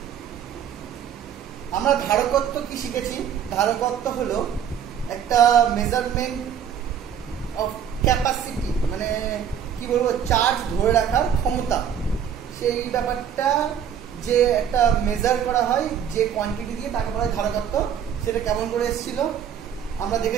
আমরা ধারকত্ব কি শিখেছি? ধারকত্ব হলো একটা মেজারমেন্ট অফ ক্যাপাসিটি, মানে কি বলবো, চার্জ ধরে রাখার ক্ষমতা। সেই ব্যাপারটা যে একটা মেজার করা হয় যে কোয়ান্টিটি দিয়ে, তাকে বলা হয় ধারকত্ব। সেটা কেমন করে এসেছিল আমরা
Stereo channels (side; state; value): left; quieter; 8.7 dB